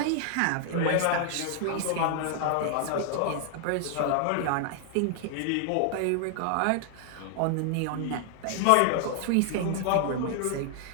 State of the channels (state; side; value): different; both; correlation 0.00